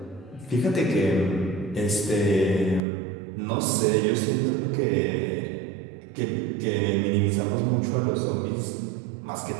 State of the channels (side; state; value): left; drops out; at 2.8 s